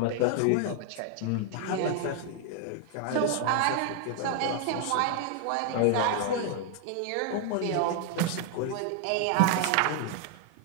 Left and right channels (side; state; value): both; different; correlation 0.00